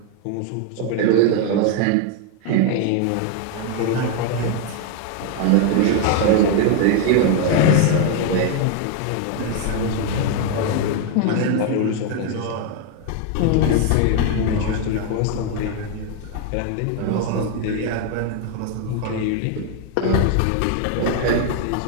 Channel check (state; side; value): different; both; correlation 0.01